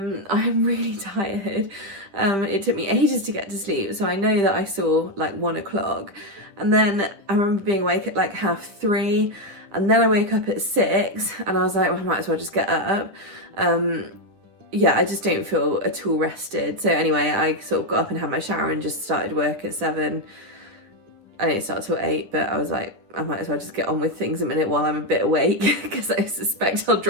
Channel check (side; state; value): left; late; 10 ms